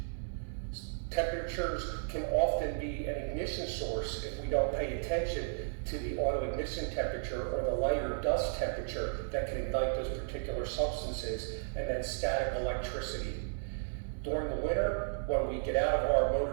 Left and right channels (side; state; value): left; silent; 55 dB below the other